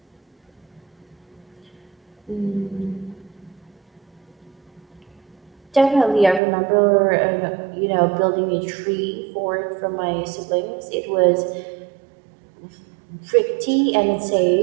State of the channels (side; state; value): left; drops out; at 6.4 s